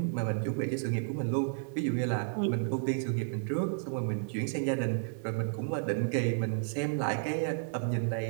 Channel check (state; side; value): silent; left; 56 dB below the other